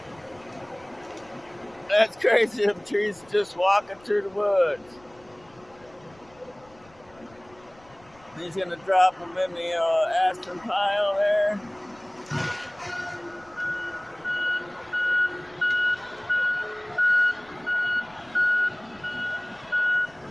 That's crazy, them trees just walking through the woods. He's gonna drop them in the aspen pile there.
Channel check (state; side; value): noise; left; rumble, 28 dB below the sound